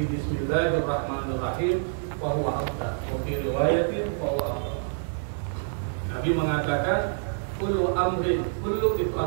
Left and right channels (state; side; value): silent; left; digital silence